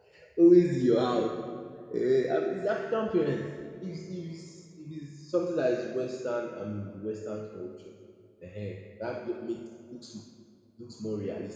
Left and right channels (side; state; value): both; identical; correlation 1.00